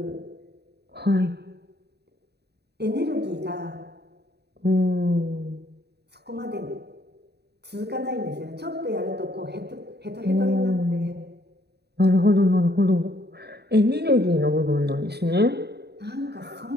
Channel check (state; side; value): late; left; 0.48 ms